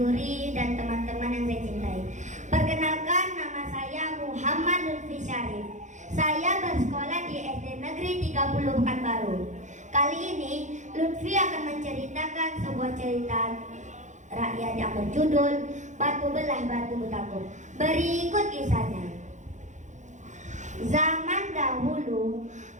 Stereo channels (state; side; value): late; left; 0.35 ms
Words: dan teman-teman yang saya cintai. Perkenalkan, nama saya Muhammad Lutfi Syarif. Saya bersekolah di SD Negeri 30 Pekanbaru. Kali ini Lutfi akan menceritakan sebuah cerita rakyat yang berjudul Batu Belah Batu Betangkup. Berikut kisahnya. Zaman dahulu,